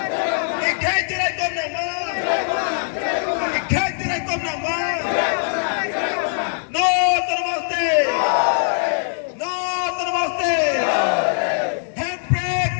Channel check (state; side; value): silent; right; digital silence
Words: Ikhai tirai kon na maँ. Ikhai tirai kon na maँ. No namaste. No namaste. Handbrake